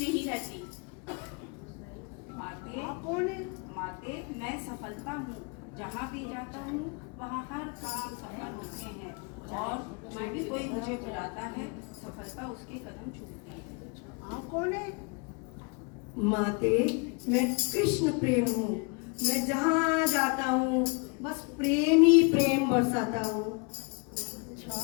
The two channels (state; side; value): quieter; right; 32.5 dB